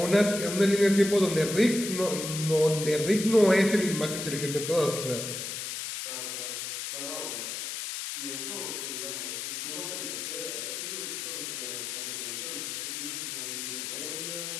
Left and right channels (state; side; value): noise; left; hiss, 5 dB below the sound